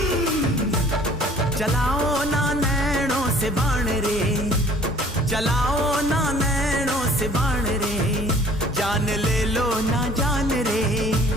चलाओ ना नैनों से बाण रे, चलाओ ना नैनों से बाण रे। जान ले लो ना जान रे,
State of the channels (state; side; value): normal; both; correlation 0.53